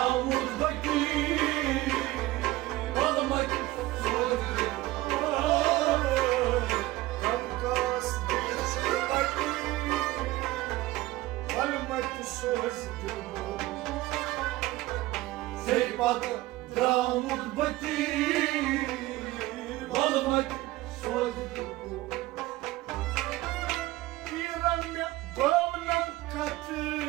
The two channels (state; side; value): quieter; left; 17.9 dB